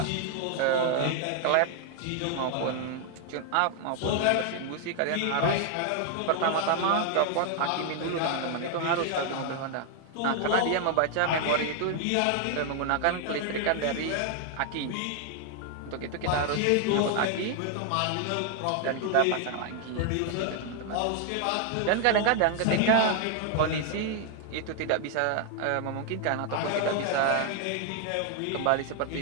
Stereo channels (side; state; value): both; different; correlation 0.00